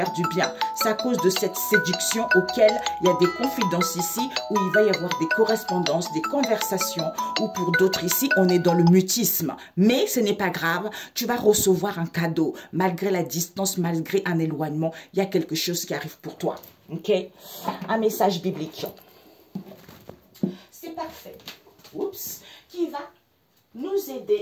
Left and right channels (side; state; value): both; identical; correlation 1.00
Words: du bien. C'est à cause de cette séduction auquel il y a des confidences ici, où il va y avoir des correspondances, des conversations, ou pour d'autres ici, on est dans le mutisme. Mais ce n'est pas grave, tu vas recevoir un cadeau. Malgré la distance, malgré un éloignement, il y a quelque chose qui arrive pour toi. Ok? Un message biblique. C'est parfait. Oups. Qui va nous